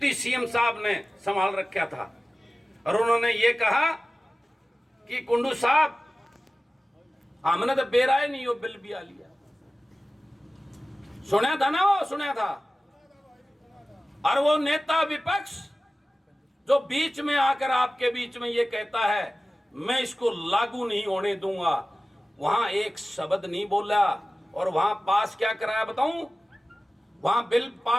सीएम साहब ने संभाल रखा था और उन्होंने ये कहा कि कुंडू साहब हमने तो बेराए नहीं हो बिल भी आ लिया। सुना था ना, वो सुना था। और वो नेता विपक्ष जो बीच में आकर आपके बीच में ये कहता है मैं इसको लागू नहीं होने दूंगा, वहां एक शब्द नहीं बोला। और वहां पास क्या कराया बताऊं, वहां बिल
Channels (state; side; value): normal; both; correlation 0.96